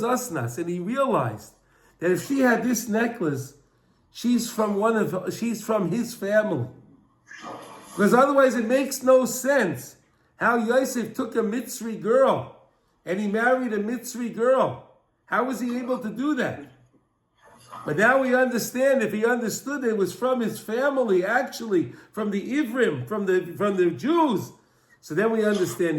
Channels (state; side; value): identical; both; correlation 1.00